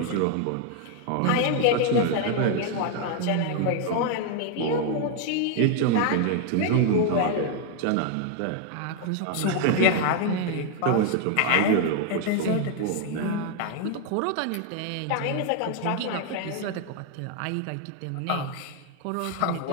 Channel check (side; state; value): both; different; correlation 0.00